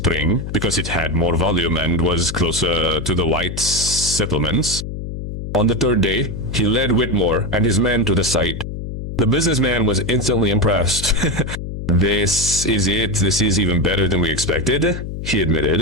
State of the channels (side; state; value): left; noise; hum, 7 dB below the sound